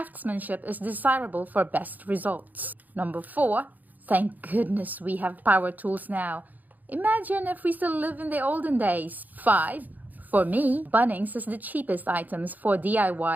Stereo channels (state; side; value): late; left; 0.082 ms